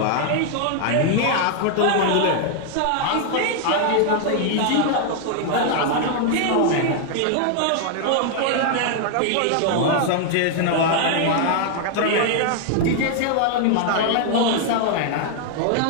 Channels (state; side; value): different; both; correlation 0.00